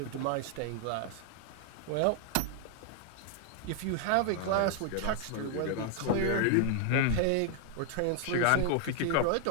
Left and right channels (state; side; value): different; both; correlation 0.00